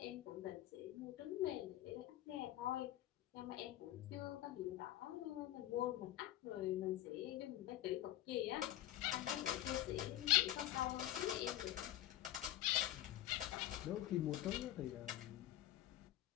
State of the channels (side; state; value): right; quieter; 14.2 dB